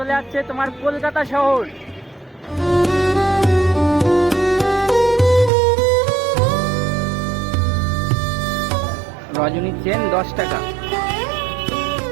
যাচ্ছে তোমার কলকাতা শহর। রজনী চেন 10 টাকা।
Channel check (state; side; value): drops out; left; at 5.5 s